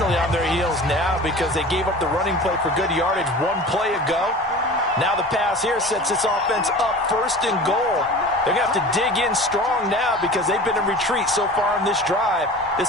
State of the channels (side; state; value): both; normal; correlation 0.38